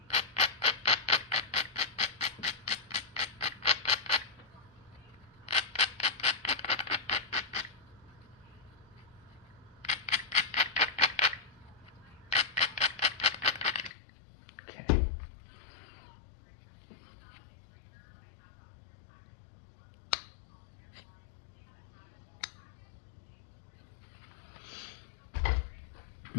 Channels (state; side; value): drops out; right; at 13.9 s